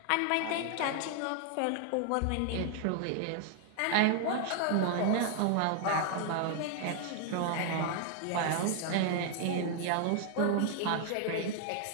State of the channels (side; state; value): both; different; correlation 0.00